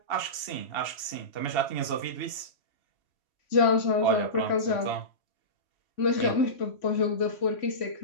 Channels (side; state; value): right; late; 3.1 ms